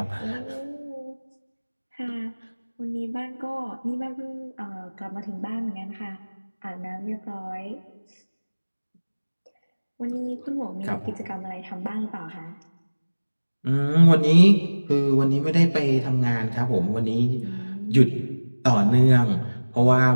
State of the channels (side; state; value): both; inverted; correlation -1.00